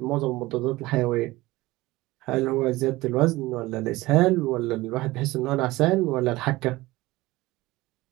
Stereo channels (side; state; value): left; quieter; 19.5 dB